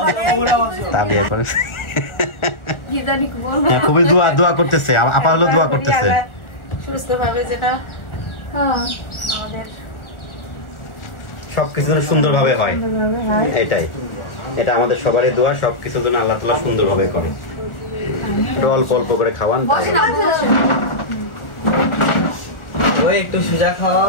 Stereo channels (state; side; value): late; right; 1.4 ms